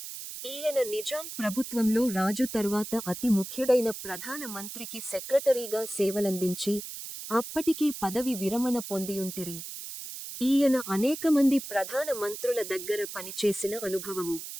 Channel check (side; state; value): right; noise; hiss, 9 dB below the sound